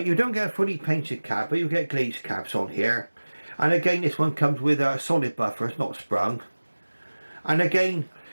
don't get a fully painted cab, but you get glazed cabs on here. And again, this one comes with a solid buffer, it's not sprung. And again,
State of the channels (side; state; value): both; inverted; correlation -1.00